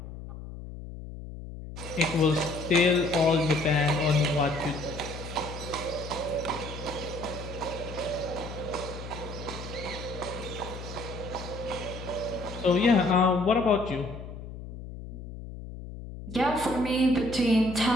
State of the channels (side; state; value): left; noise; hum, 11 dB below the sound